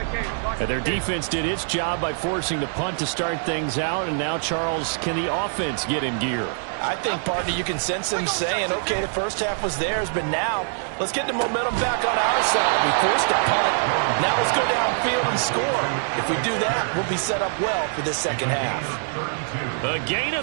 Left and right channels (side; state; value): left; silent; digital silence